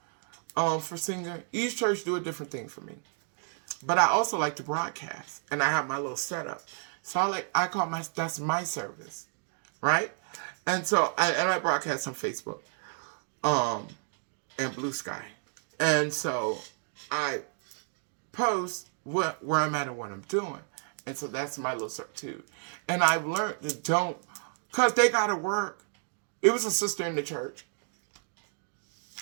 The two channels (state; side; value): silent; left; 57 dB below the other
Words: For singing. Each church do a different thing for me. But I also like to broadcast. And I have my little setup. So I call that's my service. Right? And so I broadcast on Facebook. And Blue Sky. And so I post where I'm at and what I'm doing. And so that's my little substitute. And I've learned to don't, because they got to work. It was a sister in the church.